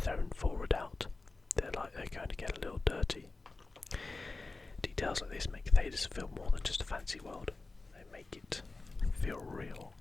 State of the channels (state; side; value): quieter; right; 3.5 dB